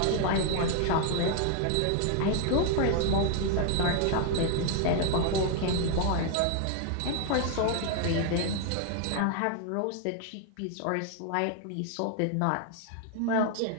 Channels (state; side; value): different; both; correlation 0.00